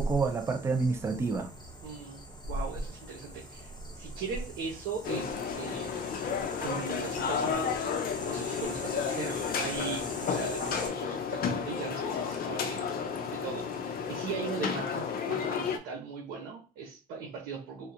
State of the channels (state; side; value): normal; both; correlation 0.29